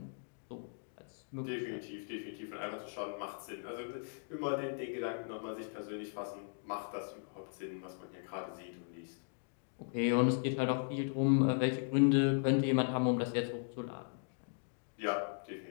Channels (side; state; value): right; silent; digital silence